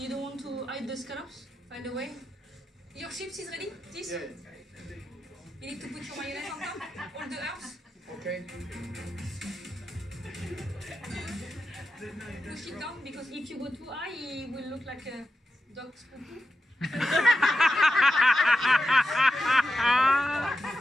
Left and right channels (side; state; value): both; normal; correlation 0.89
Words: don't want to hide the scallops, by the way? Your chips is ready? This? yeah. You need to put your mayonnaise on top? All the herbs? Okay. Push it down, because if you go too high, it will look like a dog spooky.